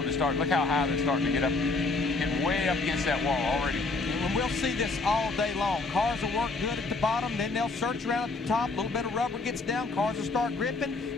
to start. Look how high they're starting to get up, getting way up against that wall already. When we'll see this all day long. Cars will work good at the bottom, then they'll search around at the top. A little bit of rubber gets down, cars will start gripping,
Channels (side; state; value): right; quieter; 3.6 dB